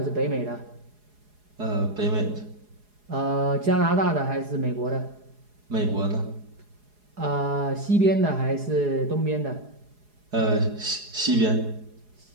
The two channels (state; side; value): late; left; 4.8 ms